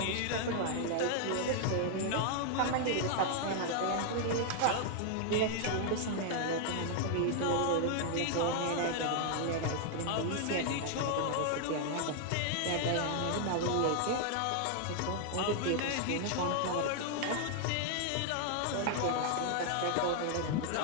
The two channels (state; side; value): different; both; correlation 0.00